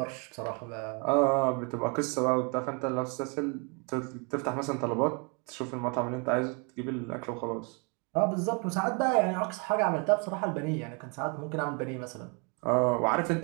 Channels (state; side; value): quieter; left; 33.4 dB